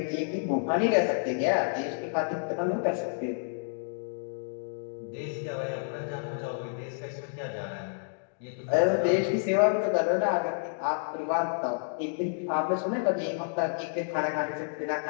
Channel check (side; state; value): right; silent; digital silence